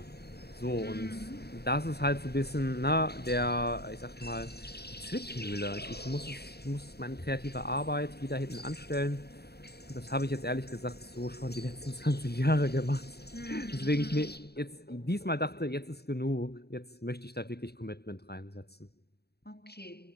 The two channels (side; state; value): right; late; 0.47 ms